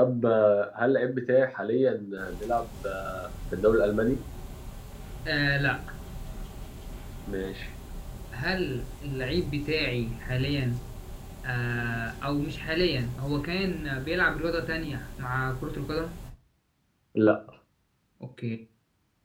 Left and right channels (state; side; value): identical; both; correlation 1.00